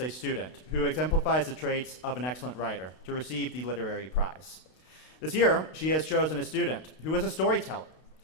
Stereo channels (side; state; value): right; late; 32 ms